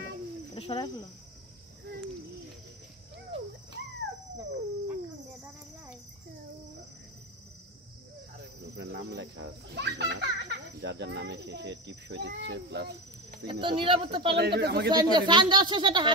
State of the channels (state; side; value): normal; both; correlation 0.22